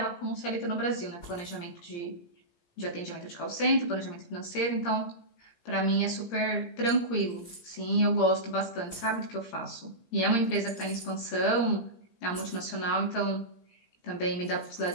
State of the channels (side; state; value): right; late; 17 ms